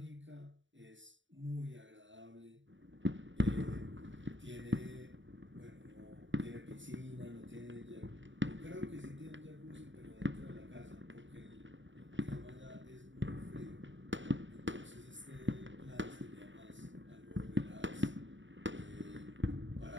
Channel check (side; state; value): left; late; 0.55 ms